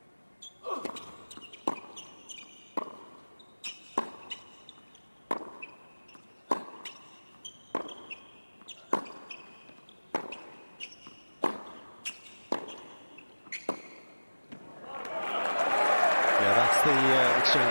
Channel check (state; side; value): inverted; both; correlation -1.00